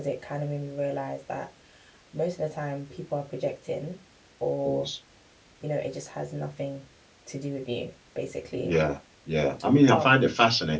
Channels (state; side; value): identical; both; correlation 1.00